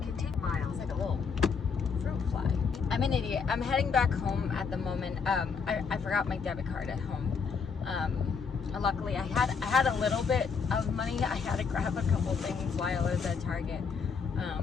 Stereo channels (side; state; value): right; quieter; 5.7 dB